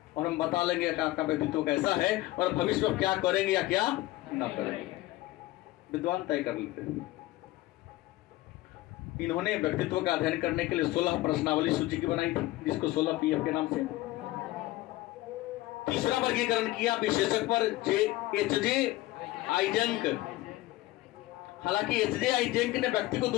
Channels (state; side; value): quieter; right; 17.7 dB